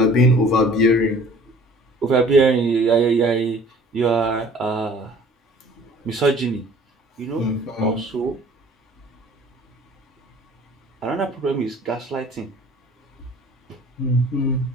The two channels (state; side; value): normal; both; correlation 0.51